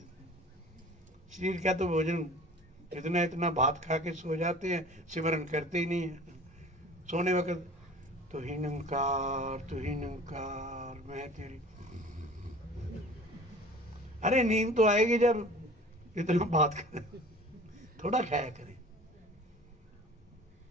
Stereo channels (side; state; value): both; normal; correlation 0.44